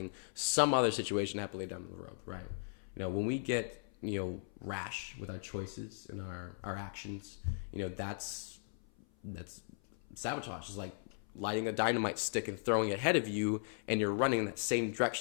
some other situation to happen later down the road, right? You know, when we get, you know, rash with our choices and our actions, you know, that's sabotage. It's like lighting a dynamite stick and throwing it ahead of you, and you're running in that same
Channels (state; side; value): silent; right; 53 dB below the other